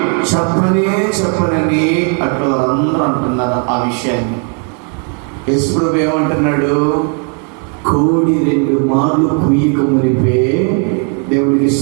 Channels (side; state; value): left; quieter; 38.6 dB